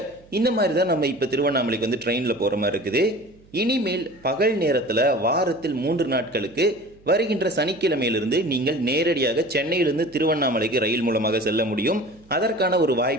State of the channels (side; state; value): right; noise; hum, 28 dB below the sound